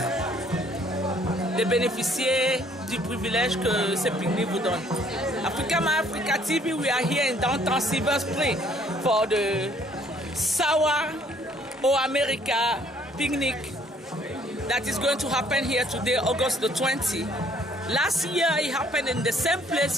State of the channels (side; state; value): both; normal; correlation 0.61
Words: de bénéficier du privilège que ce pique-nique vous donne. Africa My Africa TV, we are here in downtown Silver Spring for the Sawa O America picnic that is going to happen here today, August the 20th. Last year it happened in the same place